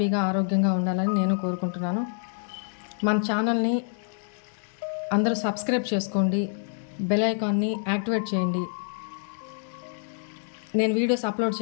ఆరోగ్యంగా ఉండాలని నేను కోరుకుంటున్నాను. మన ఛానల్ని అందరూ సబ్స్క్రైబ్ చేసుకోండి, బెల్ ఐకాన్ని యాక్టివేట్ చేయండి. నేను వీడియోస్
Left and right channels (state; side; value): silent; right; digital silence